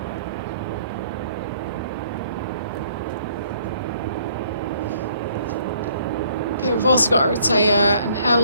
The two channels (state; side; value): inverted; both; correlation -0.62